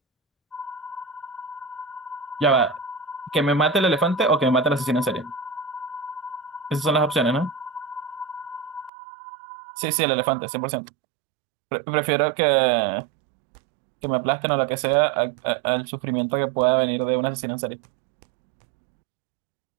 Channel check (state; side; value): drops out; left; at 8.9 s